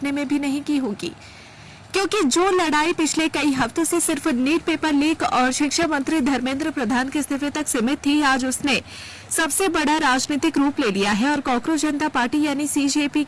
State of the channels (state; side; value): identical; both; correlation 1.00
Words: में भी नहीं की होगी, क्योंकि जो लड़ाई पिछले कई हफ्तों से सिर्फ नीट पेपर लीक और शिक्षा मंत्री धर्मेंद्र प्रधान के इस्तीफे तक सीमित थी, आज उसने सबसे बड़ा राजनीतिक रूप ले लिया है। और कांग्रेस जनता पार्टी यानी सीजेपी